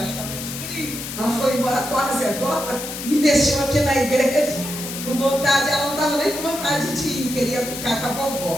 crio. Ela foi embora quase agora, me deixou aqui na igreja com vontade. Ela não estava nem com vontade de ir, queria ficar com a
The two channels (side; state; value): left; noise; hiss, 8 dB below the sound